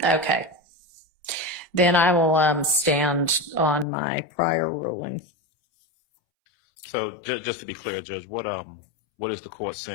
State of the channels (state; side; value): drops out; right; at 3.9 s